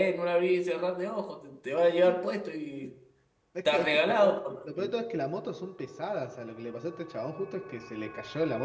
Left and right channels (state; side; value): identical; both; correlation 1.00